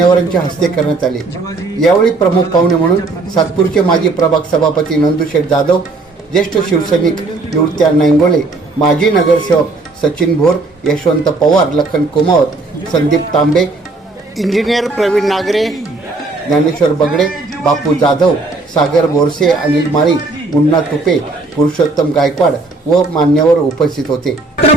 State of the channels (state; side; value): quieter; left; 3.4 dB